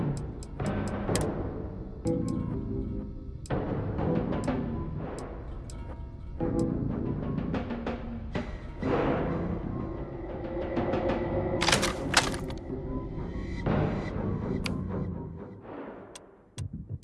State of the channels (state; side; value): identical; both; correlation 1.00